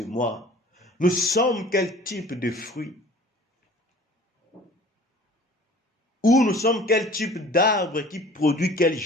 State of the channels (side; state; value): both; normal; correlation 0.47